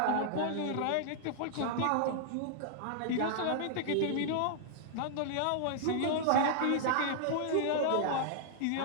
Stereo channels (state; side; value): different; both; correlation -0.01